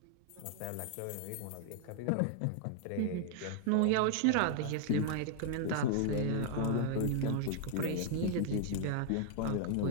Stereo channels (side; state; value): both; different; correlation 0.00